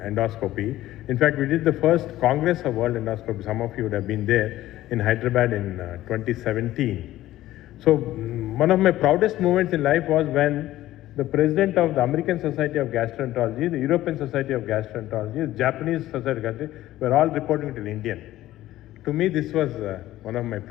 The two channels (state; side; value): quieter; right; 15.0 dB